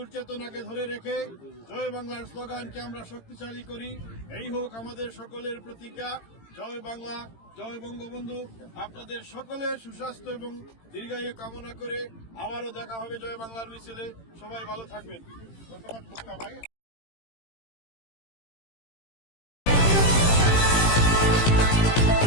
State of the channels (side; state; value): right; late; 18 ms